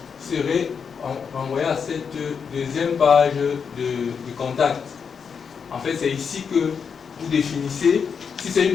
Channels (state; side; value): quieter; right; 6.3 dB